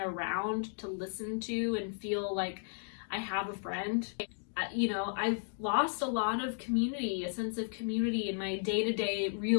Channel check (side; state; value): right; silent; digital silence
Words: around to listen to and feel like I have a friend. You know, I've lost a lot of community, a sense of community in my day-to-day